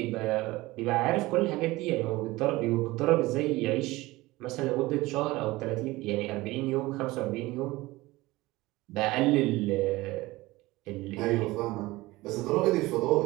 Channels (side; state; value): left; quieter; 19.8 dB